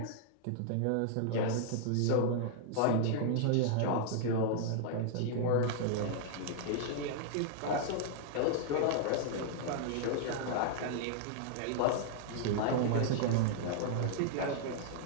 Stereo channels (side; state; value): both; different; correlation -0.01